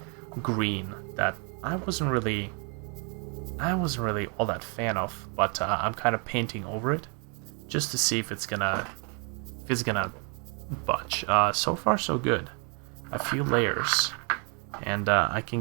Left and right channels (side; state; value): left; quieter; 36.5 dB